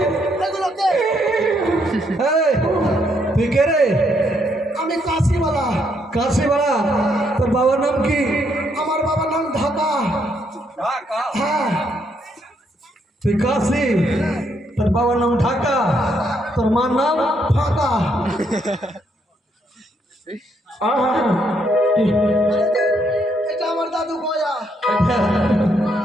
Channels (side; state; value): both; normal; correlation 0.74